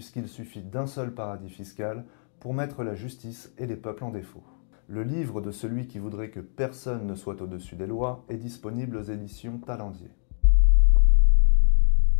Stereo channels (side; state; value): right; silent; digital silence